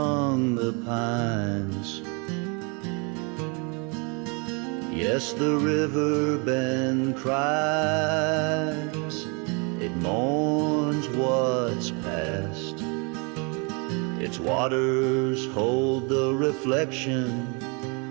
the pines. Yes, the river bend cries, it mourns what's past. Its waters hold the reflection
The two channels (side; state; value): left; quieter; 32.9 dB